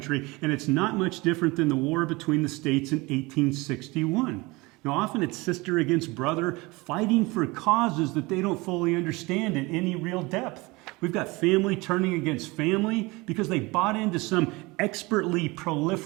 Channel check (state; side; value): quieter; left; 23.7 dB